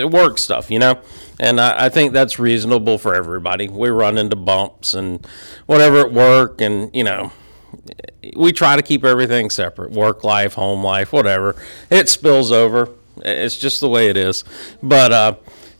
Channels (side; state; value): both; inverted; correlation -1.00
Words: Work stuff, you know? And I think that's reasonable for everybody. We run into bumps and whatever at work, and, you know, we try to keep everything separate. Work life, home life, whatever. It spills over. It's just the way it is. But,